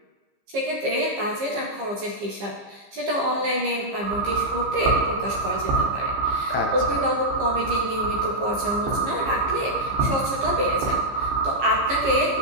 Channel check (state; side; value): late; left; 15 ms